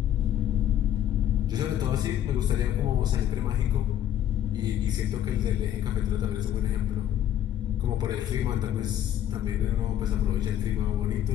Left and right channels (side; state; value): right; quieter; 11.3 dB